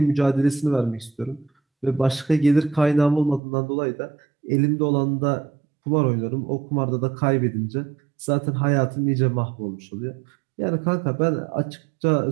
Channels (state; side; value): drops out; left; at 3.4 s